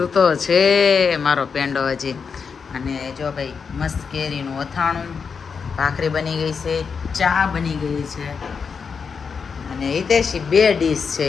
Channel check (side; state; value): right; quieter; 5.8 dB